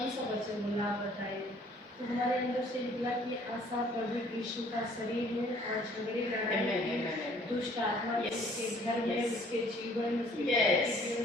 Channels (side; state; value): both; normal; correlation 0.58